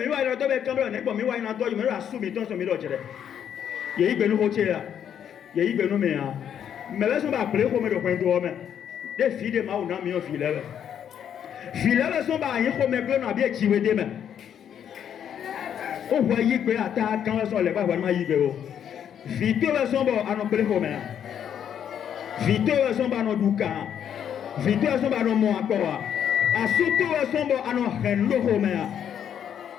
wa yando be kamera ne ba mi wa yando yo me ra su mi ton so mi do jere. Ye igbe nu ho che ya. Ye igbe nu me ya. Me be so ba ple ko me do kwen do me. De fi de ma o na mi o fi le. Filet sont pas y comme que n'a bien tiré des mains. On voit y que attaque quand sont les pas vraiment y que. Vite sont bon à nos plé comme. Vite sont pas nos douka. Vite sont pas nos mo encore. À surtout sont bon à nos rendo comme.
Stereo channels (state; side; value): quieter; right; 9.0 dB